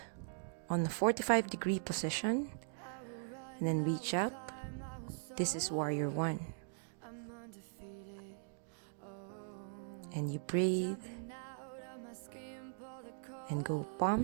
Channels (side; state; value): left; silent; digital silence